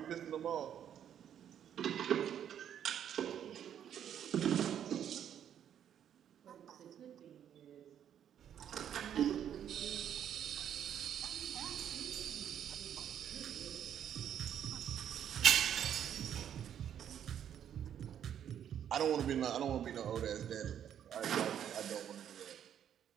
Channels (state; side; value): quieter; left; 9.6 dB